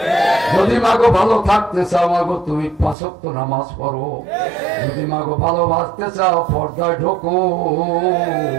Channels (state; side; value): drops out; left; at 3.0 s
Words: যদি মাগো ভালো থাকতে চাও মাগো তুমি 5 ওয়াক্ত নামাজ পড়ো, যদি মাগো ভালোবাসতে চাও পর্দায় ঢোকো।